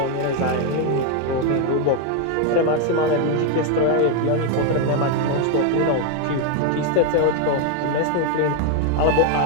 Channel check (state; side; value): different; both; correlation 0.01